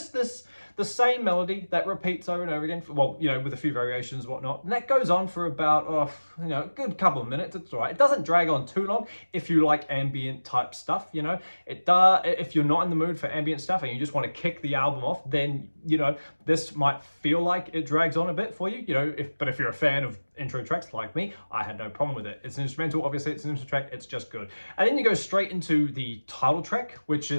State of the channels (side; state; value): both; inverted; correlation -1.00